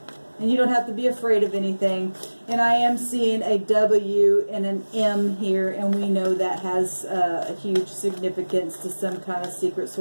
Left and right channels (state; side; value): inverted; both; correlation -1.00